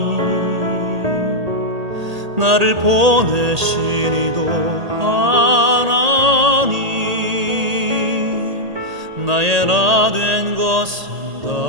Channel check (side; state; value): left; late; 1.8 ms